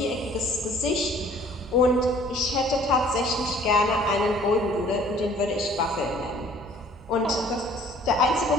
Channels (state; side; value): normal; both; correlation 0.54